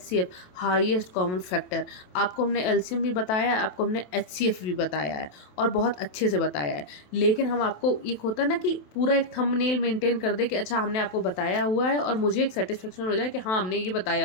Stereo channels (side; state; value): right; late; 27 ms